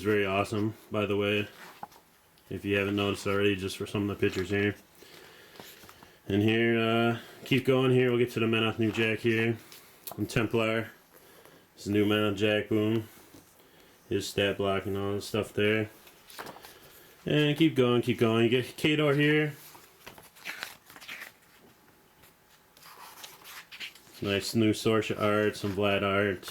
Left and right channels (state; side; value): identical; both; correlation 1.00